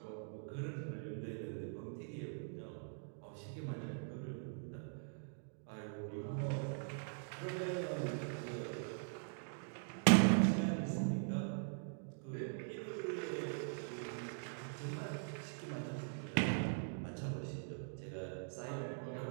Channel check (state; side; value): silent; left; digital silence